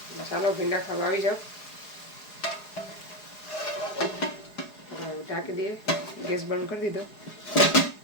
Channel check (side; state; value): right; late; 4.8 ms